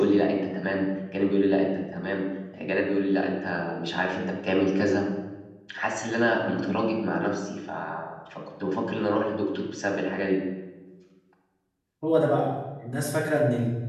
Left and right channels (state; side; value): identical; both; correlation 1.00